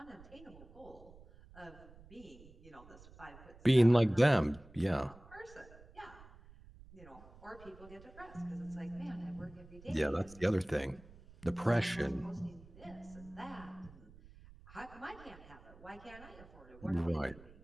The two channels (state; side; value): noise; right; rumble, 21 dB below the sound